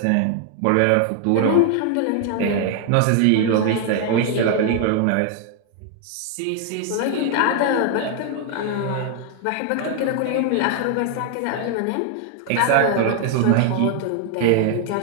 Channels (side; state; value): both; different; correlation 0.00